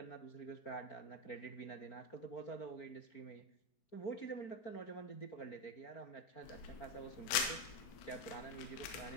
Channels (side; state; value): right; late; 4.7 ms